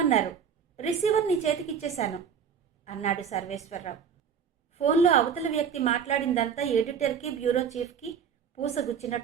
రిసీవర్ నీ చేతికిచ్చేశాను అన్నాడు సర్వేశ్వరరావు. ఫోన్లో అవతల వ్యక్తి మాట్లాడిందంతా ఎడిటర్కి బ్యూరో చీఫ్కి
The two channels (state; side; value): quieter; left; 7.2 dB